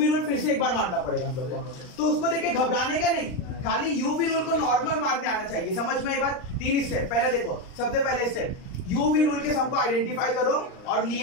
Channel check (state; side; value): late; right; 39 ms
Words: रूल फिर से एक बार मारना पड़ेगा हम लोग को। तो उसको देख के घबराने का नहीं, खाली यूवी रूल को नॉर्मल मारने आना चाहिए। समझ में आई बात? 3 स्टेप। पहले देखो, सबसे पहले स्टेप यूवी रूल के सम को आइडेंटिफाई करो और